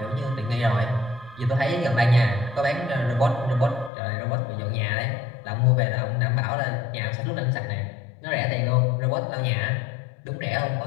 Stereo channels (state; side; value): drops out; right; at 3.9 s